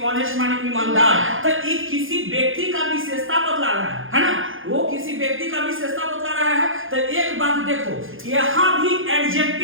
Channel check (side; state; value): left; late; 0.59 ms